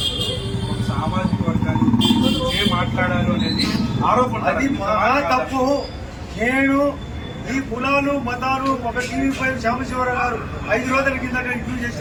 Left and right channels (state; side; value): identical; both; correlation 1.00